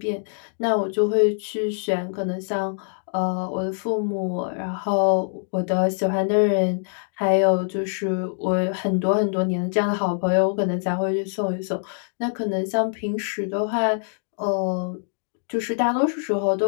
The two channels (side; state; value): right; silent; digital silence